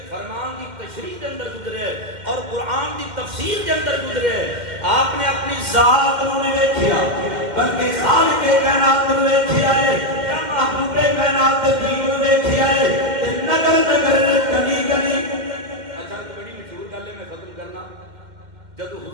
فرمان دی تشریح دے اندر گزرے ہے اور قرآن دی تفسیر دے اندر گزرے ہے. آپ نے اپنی ذات نو نہیں ویکھیا بلکہ خالق کائنات نو ویکھیا ہے, یا محبوب کائنات دین نو ویکھیا ہے. نگر نگر گلی گلی. اچھا تو بڑی مشہور گل ہے, میں ختم کرنا. جدو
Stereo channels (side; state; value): left; late; 2.1 ms